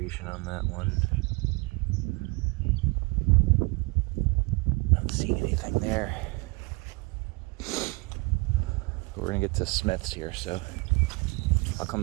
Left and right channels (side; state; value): left; quieter; 26.7 dB